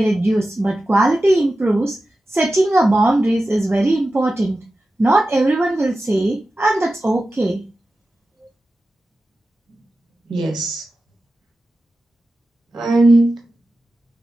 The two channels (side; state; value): both; normal; correlation 0.93